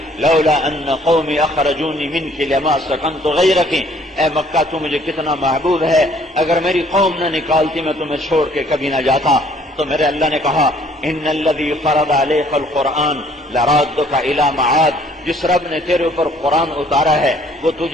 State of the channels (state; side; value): normal; both; correlation 0.60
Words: لولا ان قومی اخرجونی منک لما سکنت غیرک، اے مکہ تو مجھے کتنا محبوب ہے، اگر میری قوم نہ نکالتی میں تمہیں چھوڑ کے کبھی نہ جاتا۔ تو میرے اللہ نے کہا ان الذی فرض علیک القرآن لرادک الی معاد، جس رب نے تیرے اوپر قرآن اتارا ہے وہ